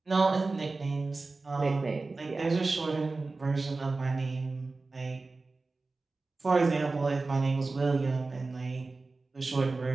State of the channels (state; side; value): quieter; left; 3.6 dB